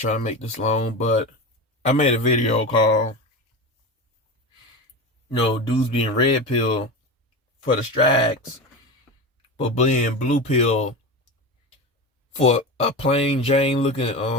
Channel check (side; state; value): both; normal; correlation 0.24